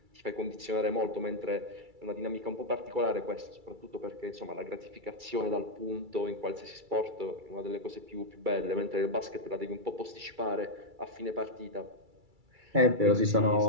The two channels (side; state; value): left; late; 2.3 ms